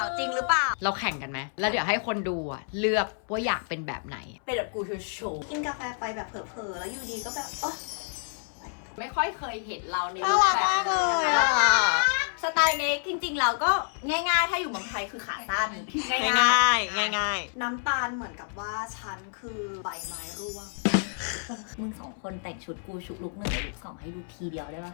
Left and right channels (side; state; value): right; silent; 59 dB below the other